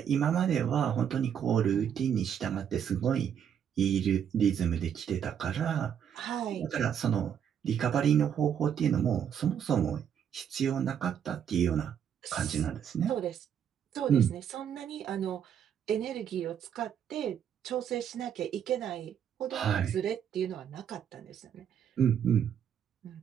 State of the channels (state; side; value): quieter; left; 8.6 dB